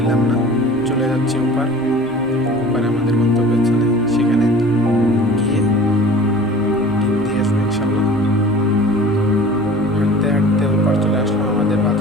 না। চলে যাচ্ছি ওপারে আমাদের গন্তব্যস্থলে, সেখানে গিয়ে ডিম দিয়ে আসবো ইনশাল্লাহ। হাঁটতে হাঁটতে ওপার চলে আসলাম আমাদের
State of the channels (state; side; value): normal; both; correlation 0.43